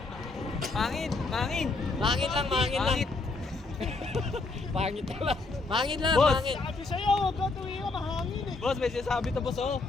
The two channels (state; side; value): quieter; right; 3.7 dB